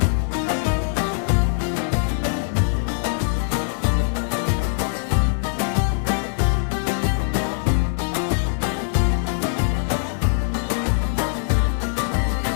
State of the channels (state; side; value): silent; right; digital silence